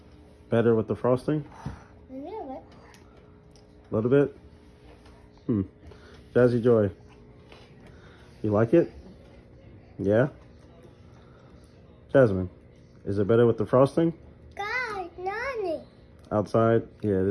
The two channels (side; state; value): both; identical; correlation 1.00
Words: Better with the frosting? A little bit. A little bit? Jazzy Joy, you like it? Yeah? Jasmine, is it better with the frosting? God, Nani. Outside? Yeah,